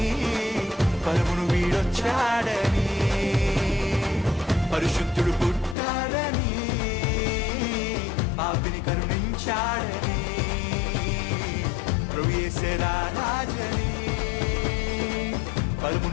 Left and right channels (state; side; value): drops out; right; at 5.8 s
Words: పరమును వీడొచ్చాడని పరిశుద్ధుడు పుట్టాడని పాపిని కరుణించాడని ప్రభు యేసే రాజని